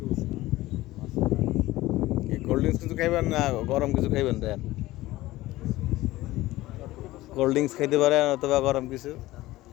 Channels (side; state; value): right; quieter; 17.5 dB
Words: কোল্ড ড্রিঙ্কস কিছু খাইবেন না গরম কিছু খাইবেন? দেন, কোল্ড ড্রিঙ্কস খাইতে পারেন অথবা গরম কিছু।